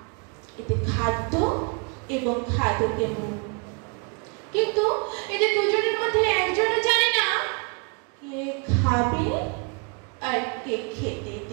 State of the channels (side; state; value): left; quieter; 35.7 dB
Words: এতে খাদ্য এবং খাদকের মুখ, কিন্তু এদের দুজনের মধ্যে একজনও জানে না কে খাবে আর কে খেতে